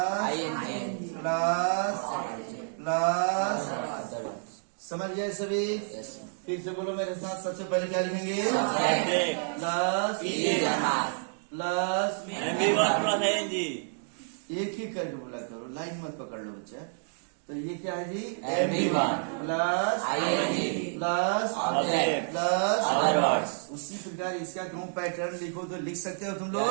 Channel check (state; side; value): silent; left; digital silence